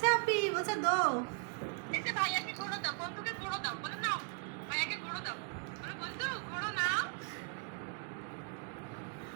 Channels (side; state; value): left; quieter; 34.8 dB